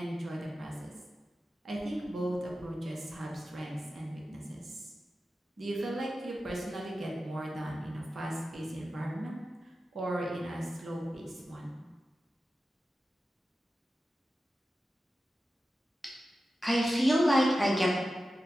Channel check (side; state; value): both; normal; correlation 0.93